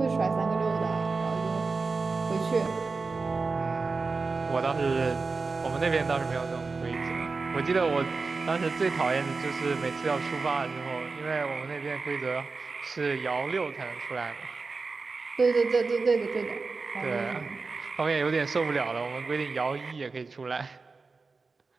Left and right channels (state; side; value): quieter; left; 4.2 dB